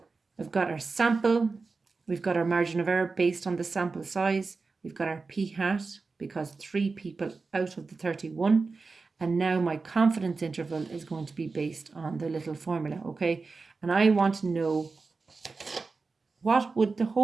we've got our sample. We've got our margin of error based on the sample size. We've got our p hat because 3 people out of the 31. And now my confidence interval is going to be based on the little formula, okay? And I want to know, what would the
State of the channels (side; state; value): left; quieter; 4.2 dB